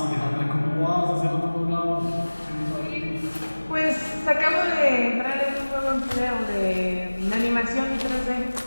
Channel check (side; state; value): both; inverted; correlation -1.00